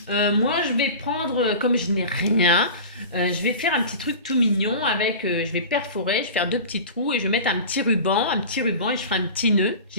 Moi, je vais prendre, comme je n'ai rien, je vais faire un petit truc tout mignon avec, je vais perforer, je vais faire 2 petits trous et je vais mettre un petit ruban et je ferai un petit nœud,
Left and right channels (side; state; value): both; inverted; correlation -0.34